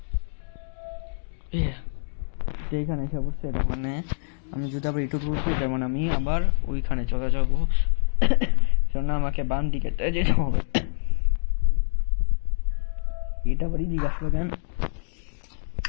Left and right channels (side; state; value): right; silent; digital silence